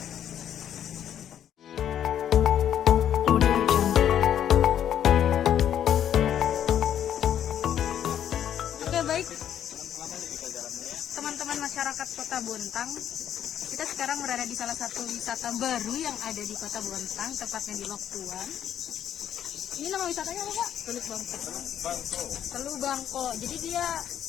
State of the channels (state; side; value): quieter; right; 10.0 dB